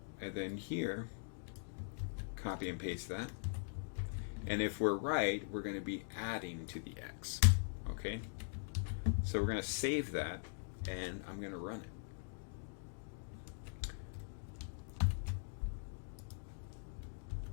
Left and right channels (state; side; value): silent; right; digital silence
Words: and then here, copy and paste that. And if we're right, we're going to be adding to the x. Okay, so we're going to save that, and I'm going to run it.